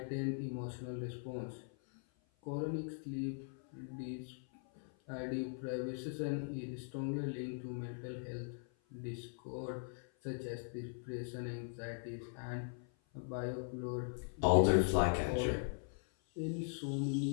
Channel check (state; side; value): silent; right; 51 dB below the other